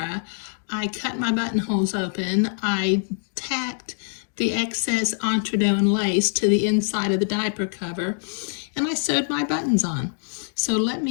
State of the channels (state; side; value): silent; right; digital silence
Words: I cut my buttonholes open. I tacked the excess entredeux and lace to the inside of the diaper cover, and I sewed my buttons on. So let